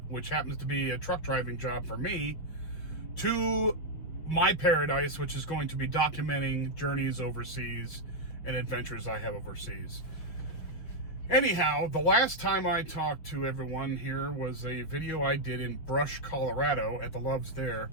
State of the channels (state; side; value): late; right; 6.6 ms